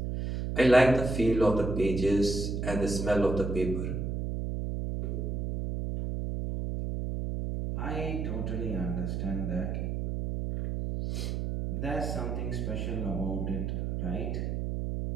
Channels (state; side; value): noise; right; hum, 2 dB below the sound